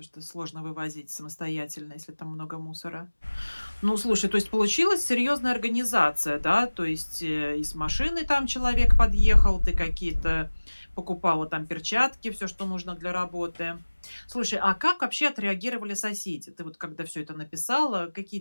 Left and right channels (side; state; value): both; inverted; correlation -1.00